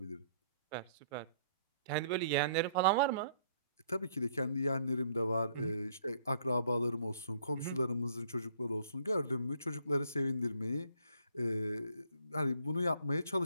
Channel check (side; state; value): both; inverted; correlation -0.63